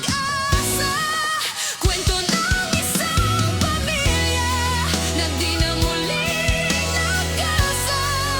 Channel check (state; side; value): identical; both; correlation 1.00